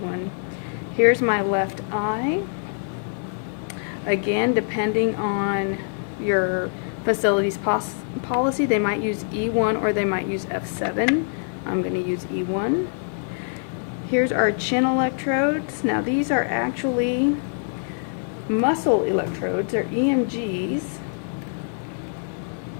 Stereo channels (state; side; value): silent; right; 62 dB below the other